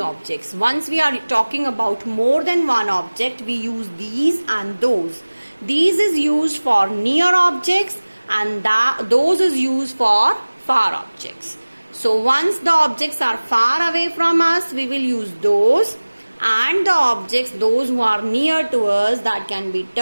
Once we are talking about more than one object, we use these and those. These is used for near objects and those is used for far objects. So once the objects are far away from us, we will use those. And the objects, those who are near to us, that can be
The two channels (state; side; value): inverted; both; correlation -1.00